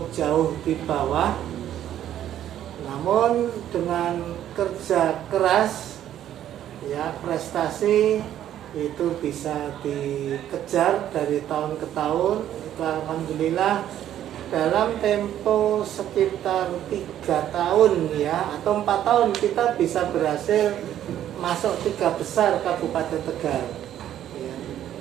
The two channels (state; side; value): quieter; left; 11.4 dB